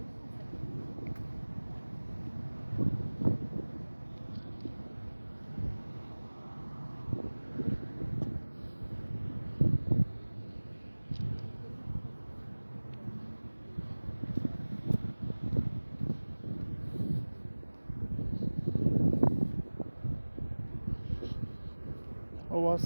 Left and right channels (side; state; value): both; inverted; correlation -1.00